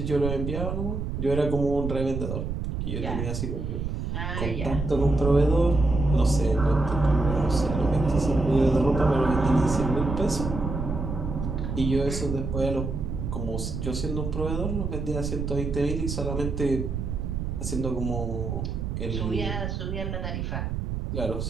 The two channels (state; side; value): noise; right; rumble, 3 dB below the sound